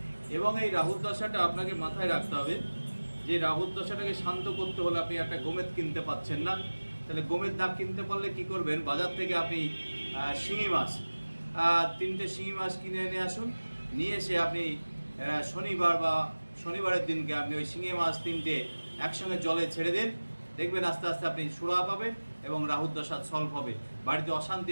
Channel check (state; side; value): inverted; both; correlation -1.00